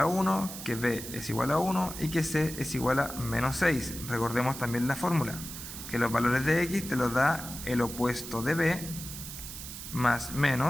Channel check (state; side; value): noise; right; hiss, 10 dB below the sound